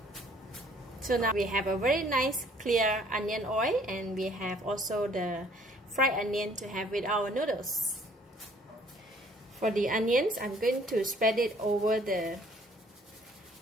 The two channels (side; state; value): both; normal; correlation 0.59